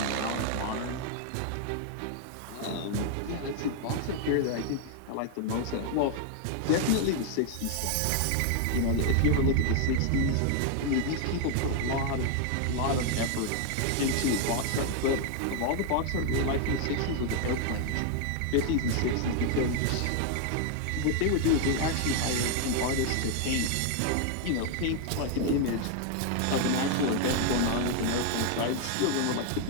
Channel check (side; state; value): both; different; correlation 0.00